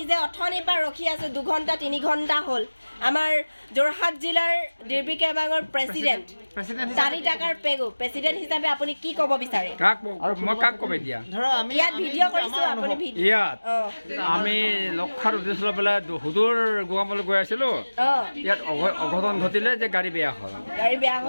যে অথনিৰ পৰা ৰখি আছো 2 ঘণ্টা 3 ঘণ্টা হ'ল আমাৰ যোৰহাট জিলাৰ ডিব্ৰুগড় কেবাঙৰ প্ৰেচিডেণ্ট 4 টাকাৰ পেগু প্ৰেচিডেণ্ট হিচাপে আপুনি কি ক'ব বিচাৰে মই কাক ক'ব এতিয়া ইয়াত ভিডিঅ' কৰিছো আপুনি ইয়াত আমি লক্ষাৰ উদ্দেশ্য লৈ পেলাই সুদূৰ গোগামুখলৈ গৈ আছিলোঁ ইয়াত অঘটন ঘটিলে যে গাড়ী বেয়া হ'ল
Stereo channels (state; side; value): inverted; both; correlation -1.00